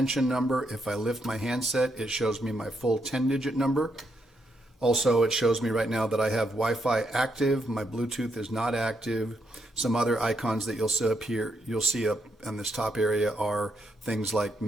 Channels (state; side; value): normal; both; correlation 0.78